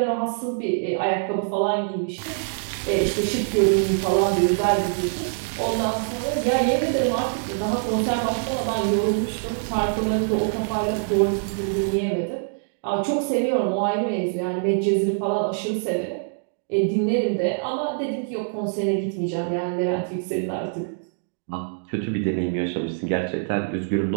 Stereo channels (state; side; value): silent; left; digital silence